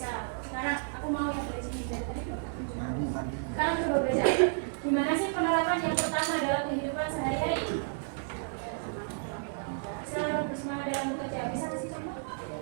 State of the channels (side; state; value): left; silent; digital silence